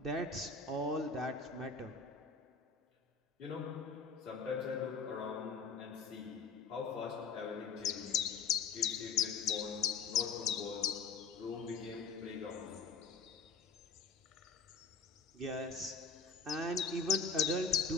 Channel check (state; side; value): quieter; right; 4.9 dB